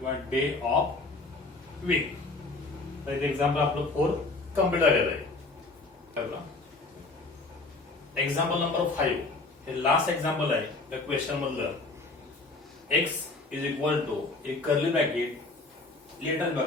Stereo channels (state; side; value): quieter; right; 3.4 dB